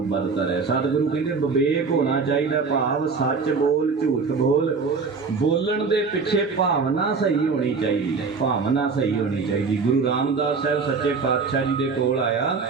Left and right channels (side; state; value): left; quieter; 4.8 dB